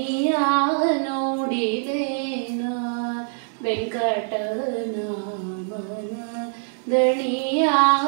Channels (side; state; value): left; silent; digital silence